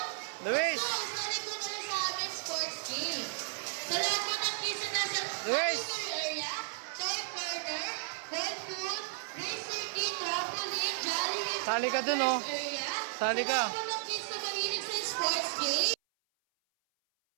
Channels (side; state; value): left; silent; 55 dB below the other